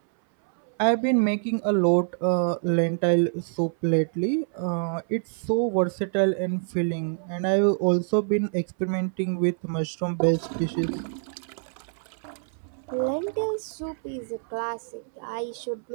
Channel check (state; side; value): silent; left; 61 dB below the other